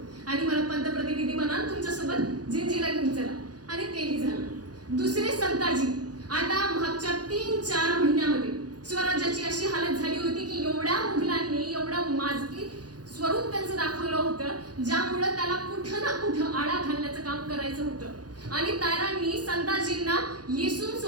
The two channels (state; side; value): late; left; 0.69 ms